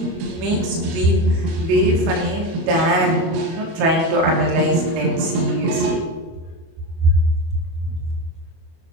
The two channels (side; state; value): left; late; 25 ms